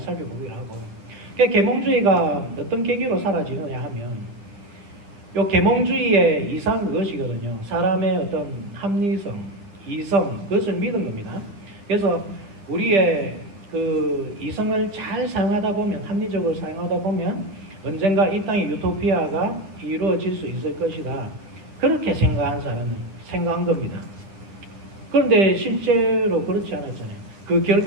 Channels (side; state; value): left; late; 9.9 ms